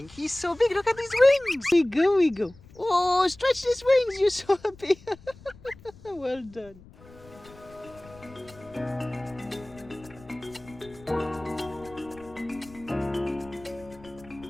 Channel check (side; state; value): left; noise; rumble, 22 dB below the sound